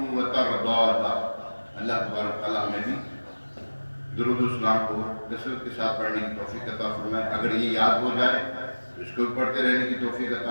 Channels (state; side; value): inverted; both; correlation -1.00